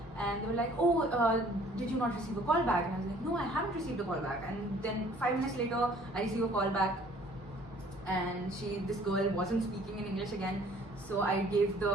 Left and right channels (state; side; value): normal; both; correlation 0.55